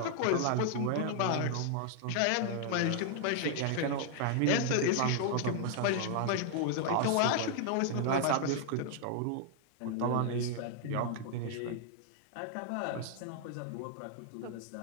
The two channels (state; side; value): different; both; correlation 0.00